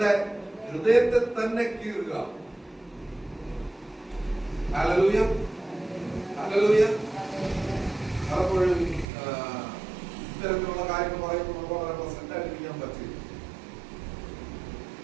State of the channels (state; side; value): drops out; left; at 9.1 s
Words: ഹൃദയത്തെ തന്നെ കീറുക. Hallelujah, hallelujah. പലപ്പോഴും ഇത്തരത്തിലുള്ള കാര്യങ്ങൾ പറയുമ്പോൾ നമുക്ക് വളരെ പ്രസന്റ് ആയിരിക്കാൻ പറ്റില്ല.